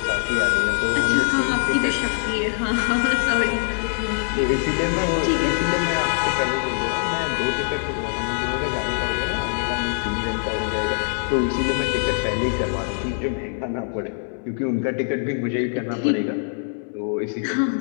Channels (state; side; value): silent; right; 63 dB below the other